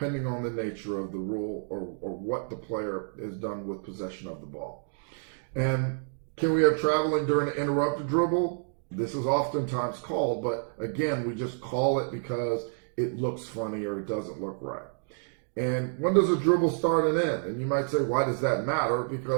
on the nature of the rule or what the player has done with possession of the ball. And can we have traveling during an interrupted dribble? This is oftentimes called, but again, we just call it because it looks funny or it doesn't look right. And when does a dribble start and end? And you might say, why does that matter?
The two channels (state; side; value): silent; left; digital silence